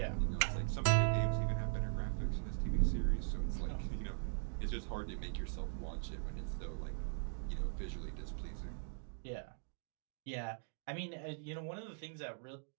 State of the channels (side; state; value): left; silent; digital silence